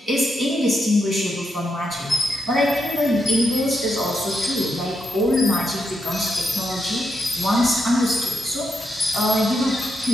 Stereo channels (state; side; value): normal; both; correlation 0.82